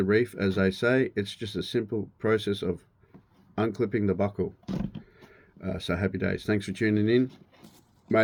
reef, as they say, it's just a simple process of unclipping the buckle. So happy days. Thanks for tuning in.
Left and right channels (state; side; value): identical; both; correlation 1.00